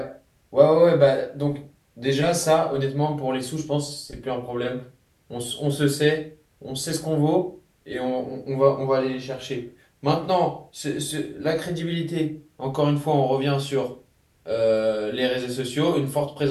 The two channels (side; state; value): both; identical; correlation 1.00